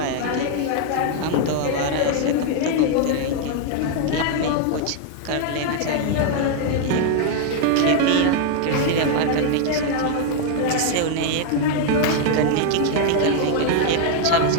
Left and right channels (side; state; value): both; different; correlation 0.00